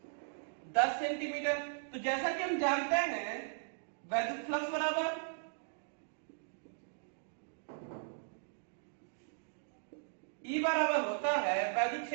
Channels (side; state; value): left; silent; digital silence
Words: 10 सेंटीमीटर। तो जैसा कि हम जानते हैं वैद्युत फ्लक्स बराबर E बराबर होता है वैद्युत